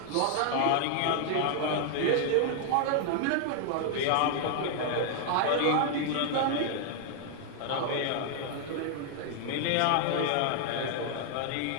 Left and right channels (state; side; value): different; both; correlation 0.00